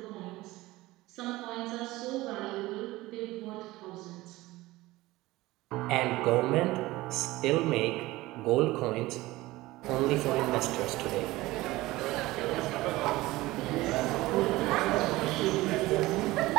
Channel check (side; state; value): left; quieter; 18.9 dB